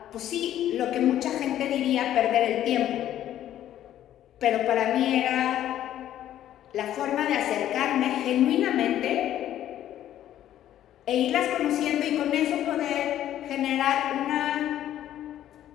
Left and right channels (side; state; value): right; quieter; 11.9 dB